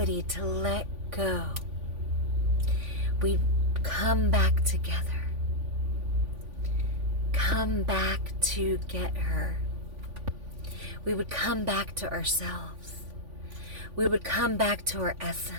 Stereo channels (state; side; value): late; left; 3.5 ms